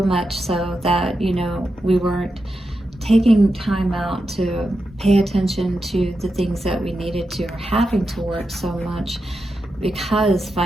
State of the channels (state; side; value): normal; both; correlation 0.88